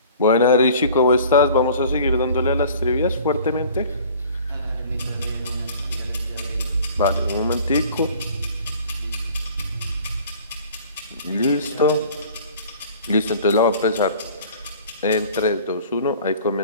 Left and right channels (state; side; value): inverted; both; correlation -0.48